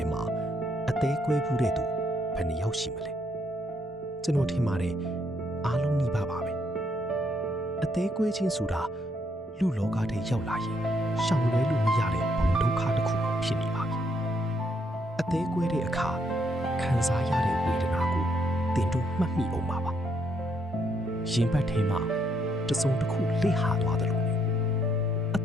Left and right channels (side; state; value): both; normal; correlation 0.73